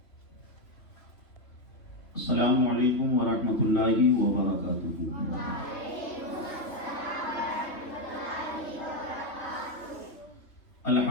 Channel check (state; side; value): late; right; 3.1 ms